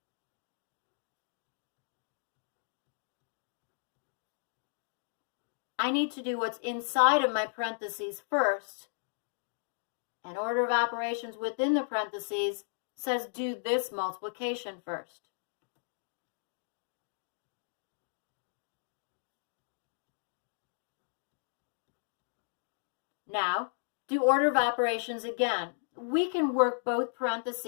I need to do what's inside of my parentheses first, and order of operations within the parentheses says do this multiplication first. Now, do order of operations again. We can work both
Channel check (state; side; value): silent; right; digital silence